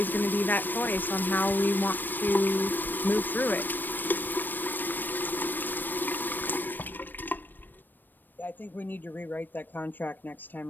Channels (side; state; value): right; late; 0.092 ms